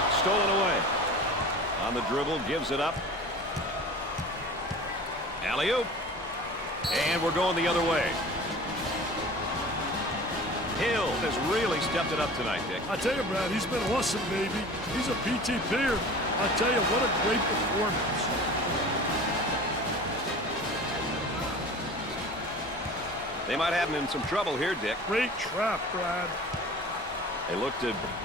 Stolen away. On the dribble, gives it up. Alley-oop. And we're going the other way. Hill has really stepped it up tonight, Dick. I tell you, Brad, he's been awesome, baby. He's a PTPer. I tell you, what a great performance. They might have him in some trouble here, Dick. Great trap, Brad. They look to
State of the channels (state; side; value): normal; both; correlation 0.39